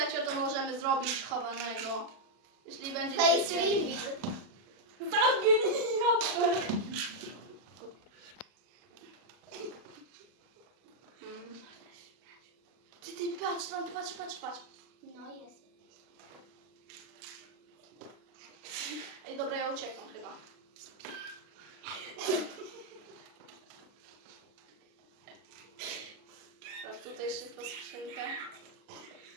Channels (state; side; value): late; left; 40 ms